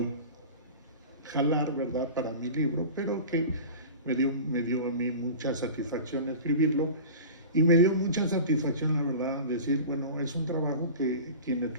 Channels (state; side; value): inverted; both; correlation -0.35